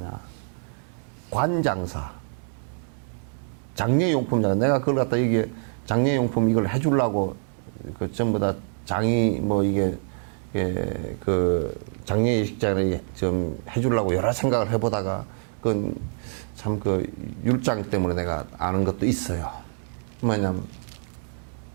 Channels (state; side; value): silent; left; 61 dB below the other